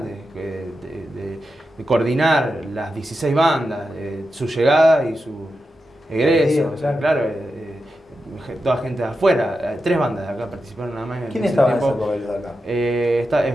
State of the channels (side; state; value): both; normal; correlation 0.89